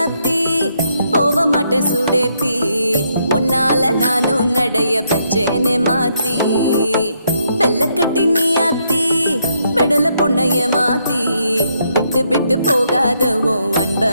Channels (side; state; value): both; inverted; correlation -0.76